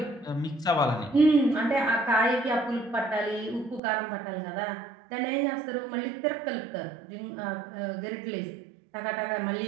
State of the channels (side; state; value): left; drops out; at 3.8 s